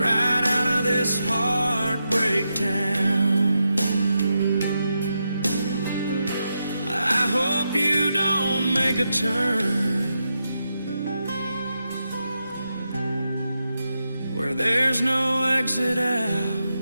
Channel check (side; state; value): both; inverted; correlation -0.86